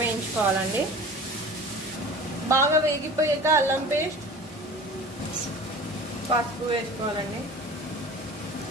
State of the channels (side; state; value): both; normal; correlation 0.39